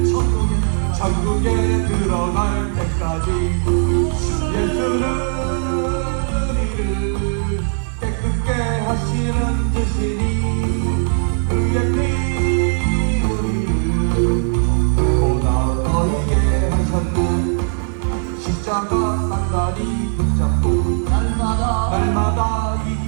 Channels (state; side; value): silent; left; 63 dB below the other